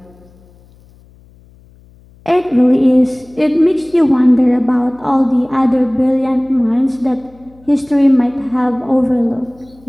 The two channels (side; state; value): left; noise; hum, 28 dB below the sound